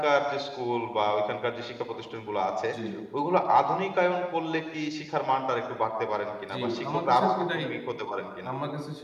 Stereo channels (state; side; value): identical; both; correlation 1.00